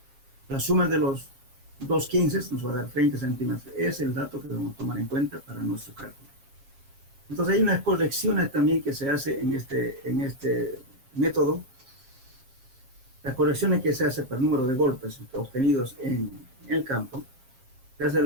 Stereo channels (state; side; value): late; left; 7.5 ms